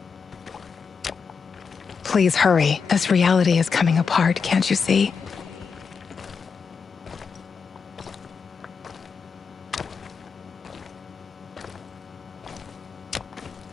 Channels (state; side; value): quieter; right; 5.7 dB